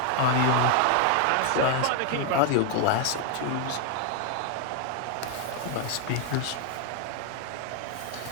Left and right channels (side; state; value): both; different; correlation 0.00